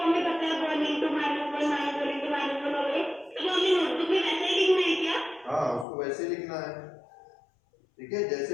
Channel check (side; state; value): right; drops out; at 5.9 s